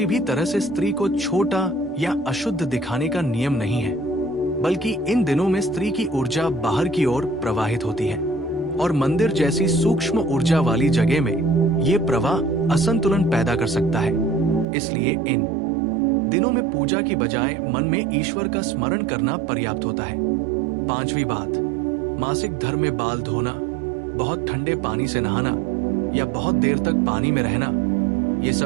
भी तरह से स्त्री को छोटा या अशुद्ध दिखाने का नियम नहीं है, बल्कि इन दिनों में स्त्री की ऊर्जा बाहर की ओर प्रवाहित होती है, और मंदिर जैसी सूक्ष्म ऊर्जा वाली जगह में ये प्रवाह असंतुलन पैदा कर सकता है। इसलिए इन दिनों में पूजा की बजाय मन में ईश्वर का स्मरण करना पर्याप्त होता है। पांचवी बात, मासिक धर्म में बाल धोना, बहुत ठंडे पानी से नहाना या बहुत देर तक पानी में रहना, ये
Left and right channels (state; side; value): drops out; left; at 14.7 s